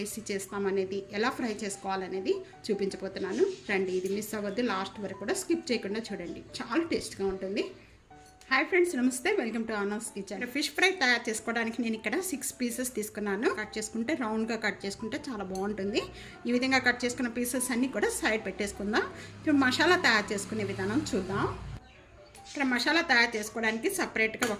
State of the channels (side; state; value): both; identical; correlation 1.00